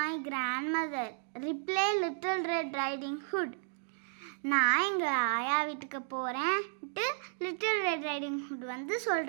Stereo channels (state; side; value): silent; left; digital silence